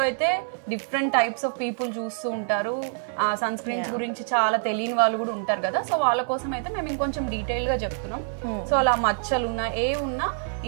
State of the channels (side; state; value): left; silent; digital silence